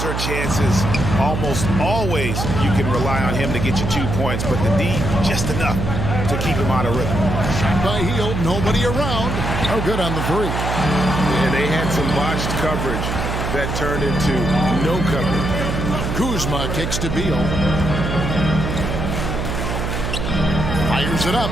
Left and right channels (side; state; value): right; noise; hum, 2 dB below the sound